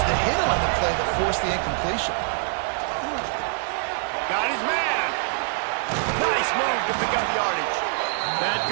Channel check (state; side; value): silent; left; 58 dB below the other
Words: the hit on the play that forced the incompletion. Got his man. Nice move to pick up yardage. That